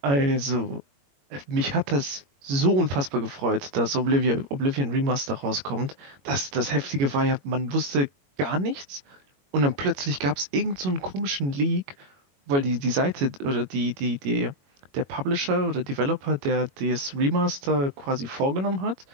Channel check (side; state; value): left; late; 21 ms